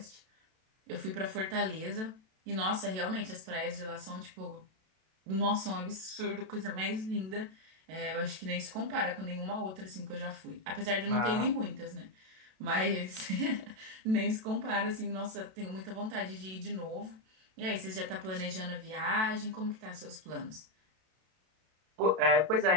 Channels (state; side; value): late; left; 32 ms